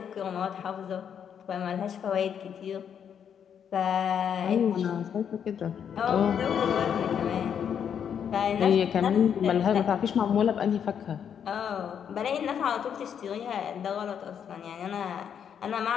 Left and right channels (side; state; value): right; quieter; 8.1 dB